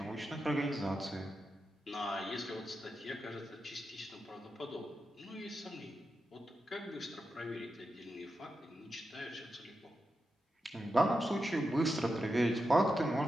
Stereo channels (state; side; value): normal; both; correlation 0.89